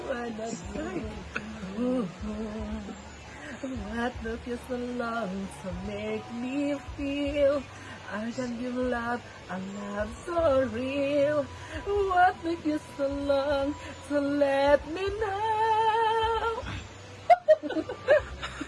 wanna do. What took you so long to make me feel I can give love, a love so real? What took you so long to let me know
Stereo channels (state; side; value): identical; both; correlation 1.00